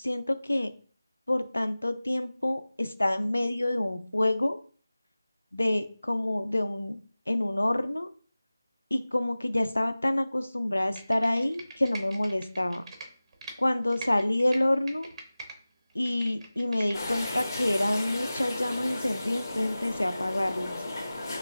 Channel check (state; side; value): inverted; both; correlation -0.97